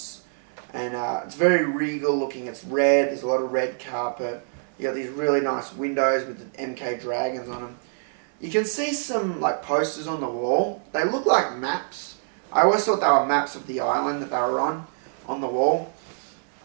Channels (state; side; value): silent; left; 57 dB below the other